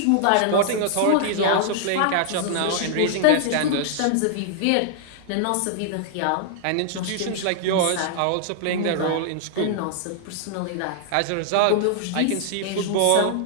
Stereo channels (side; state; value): both; different; correlation -0.01